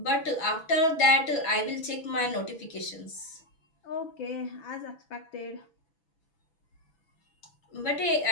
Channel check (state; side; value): late; right; 6.0 ms